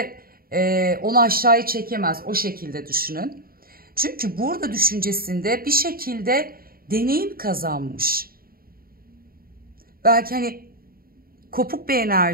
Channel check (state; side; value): late; left; 0.43 ms